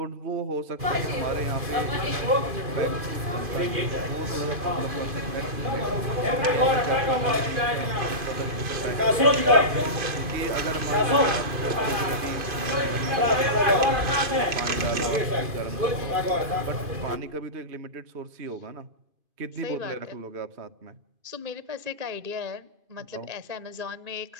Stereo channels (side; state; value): left; late; 2.4 ms